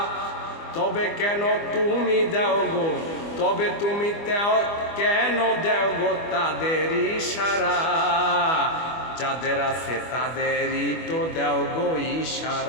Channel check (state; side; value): late; right; 25 ms